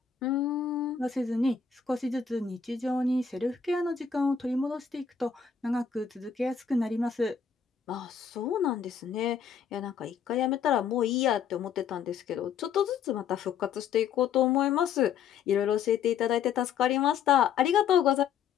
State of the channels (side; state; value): right; quieter; 7.2 dB